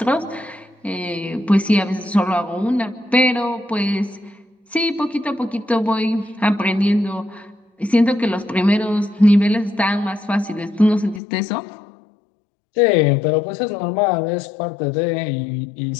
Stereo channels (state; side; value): drops out; right; at 11.2 s